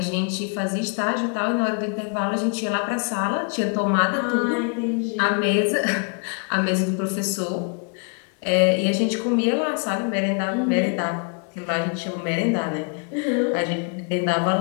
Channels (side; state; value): right; quieter; 39.9 dB